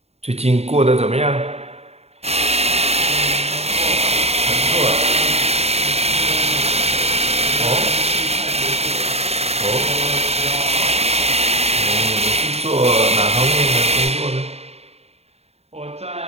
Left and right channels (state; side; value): late; left; 0.30 ms